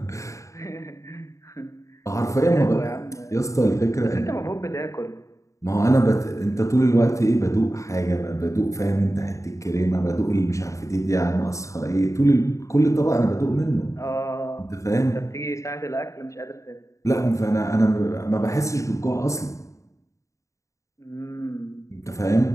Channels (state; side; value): late; right; 0.15 ms